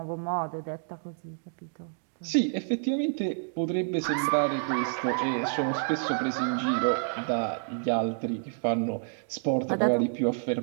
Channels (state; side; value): silent; left; digital silence